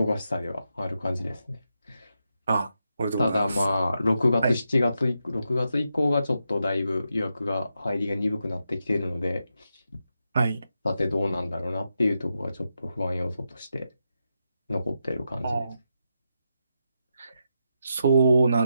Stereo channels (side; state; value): both; inverted; correlation -0.85